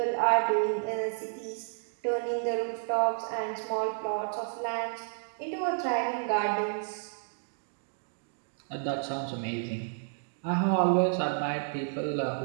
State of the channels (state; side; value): silent; left; digital silence